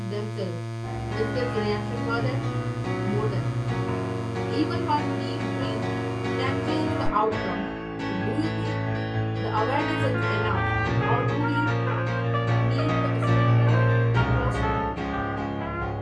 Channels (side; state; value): both; identical; correlation 1.00